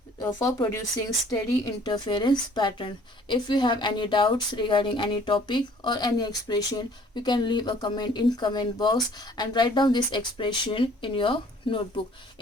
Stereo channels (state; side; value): normal; both; correlation 0.56